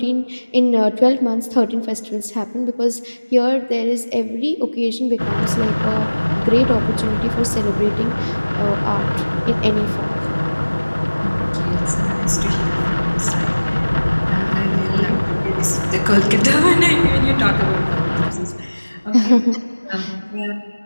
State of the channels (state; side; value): inverted; both; correlation -1.00